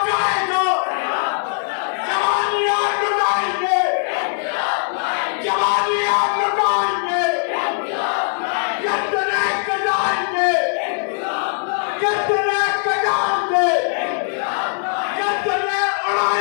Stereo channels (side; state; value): right; silent; 65 dB below the other